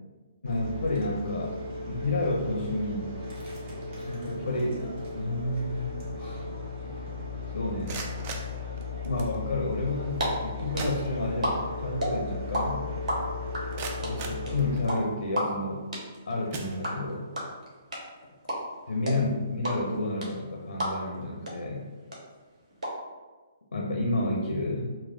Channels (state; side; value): inverted; both; correlation -0.61